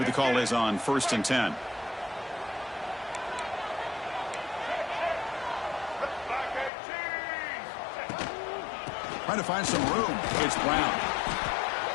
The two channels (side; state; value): right; drops out; at 6.7 s